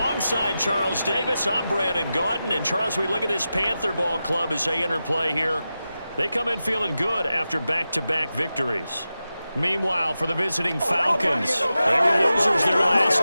Charles Davis, I'm Brandon Gaudin. And Charles, we look at this Panther ball club as they interplay here. They come in feeling good after back-to-back victories. Meanwhile, for the visiting Falcons, they were losers their last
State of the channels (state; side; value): inverted; both; correlation -0.92